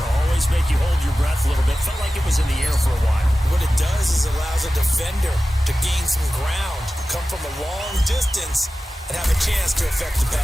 always make you hold your breath a little bit. Felt like it was in the air for a while. What it does is allows a defender to gain some ground, come from a long distance, and have a chance to affect the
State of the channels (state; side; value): normal; both; correlation 0.95